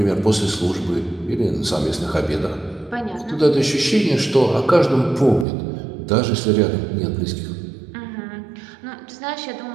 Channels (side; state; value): left; drops out; at 5.5 s